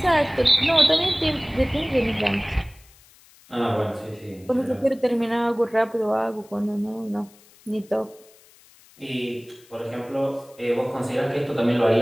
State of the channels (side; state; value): left; noise; hiss, 27 dB below the sound